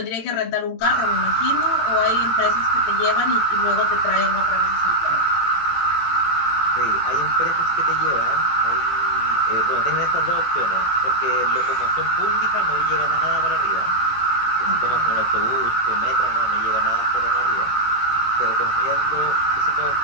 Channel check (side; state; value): right; late; 18 ms